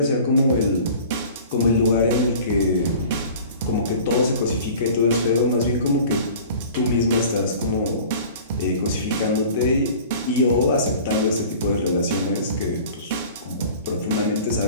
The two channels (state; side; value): inverted; both; correlation -0.44